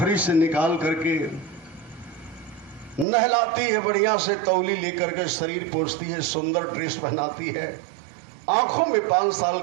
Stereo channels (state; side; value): drops out; left; at 3.1 s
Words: से निकाल करके नहलाती है, बढ़िया से तौली लेकर के शरीर पोंछती है, सुंदर ड्रेस पहनाती है, आंखों में 5 साल